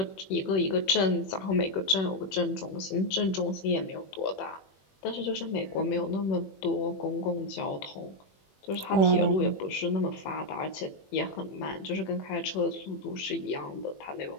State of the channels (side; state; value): right; late; 21 ms